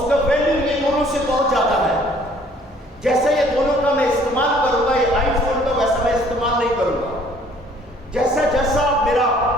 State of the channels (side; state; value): both; normal; correlation 0.58